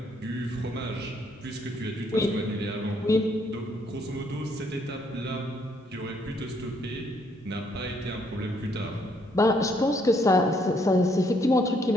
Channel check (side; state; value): both; normal; correlation 0.69